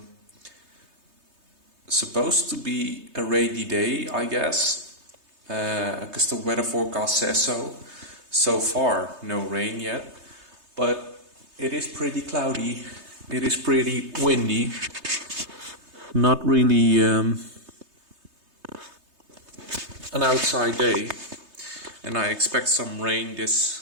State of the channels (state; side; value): late; left; 3.3 ms